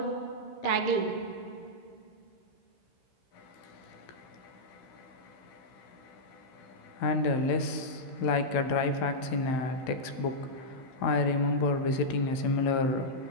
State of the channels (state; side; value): late; right; 15 ms